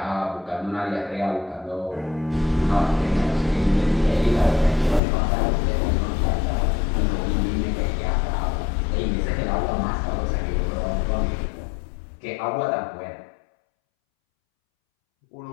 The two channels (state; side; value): drops out; right; at 5.0 s